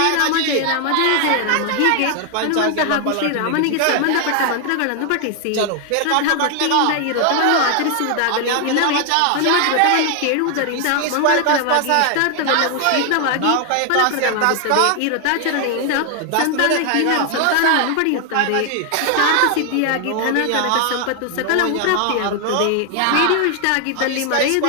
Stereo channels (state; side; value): different; both; correlation 0.00